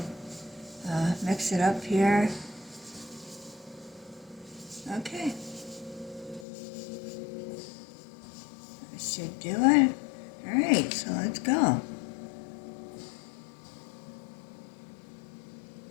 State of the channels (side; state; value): right; drops out; at 6.5 s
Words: mix it up here. Okay. That should do it. Alright, so let's go.